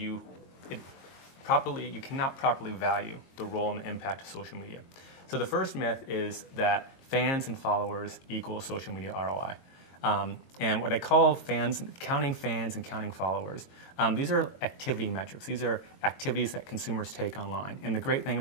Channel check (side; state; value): right; late; 22 ms